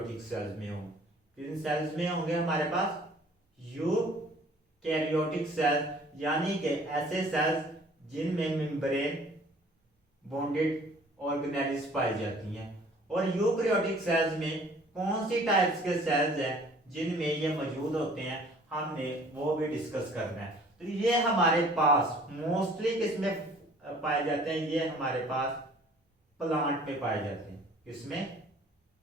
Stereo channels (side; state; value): both; normal; correlation 0.53